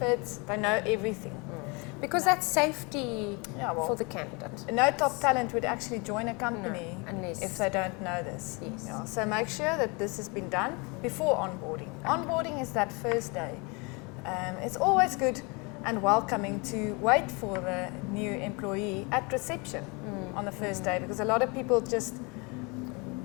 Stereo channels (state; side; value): quieter; right; 29.5 dB